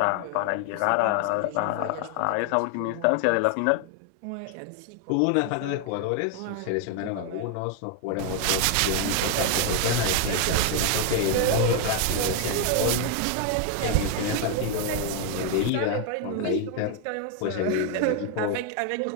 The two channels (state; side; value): different; both; correlation 0.01